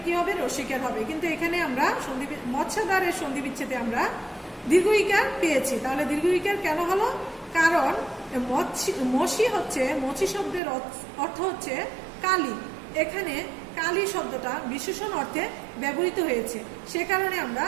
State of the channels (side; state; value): left; drops out; at 10.6 s